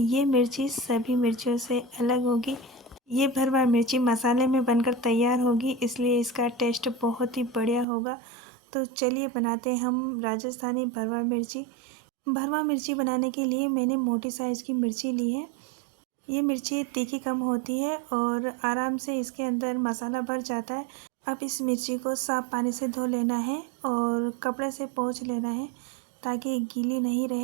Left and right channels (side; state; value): left; drops out; at 7.9 s